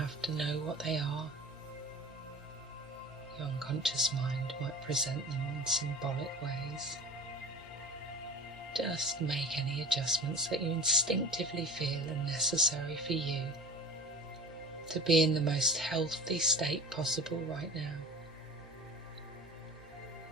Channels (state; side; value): normal; both; correlation 0.39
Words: to know what they are. Your unconscious mind might present them in symbolic ways. Just make any adjustments that you instinctively feel are necessary for you to be in the most healthy state possible right now.